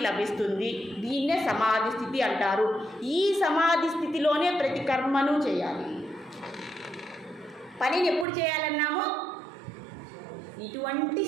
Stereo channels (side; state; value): left; drops out; at 8.2 s